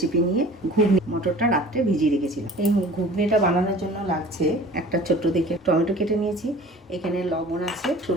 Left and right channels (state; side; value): normal; both; correlation 0.45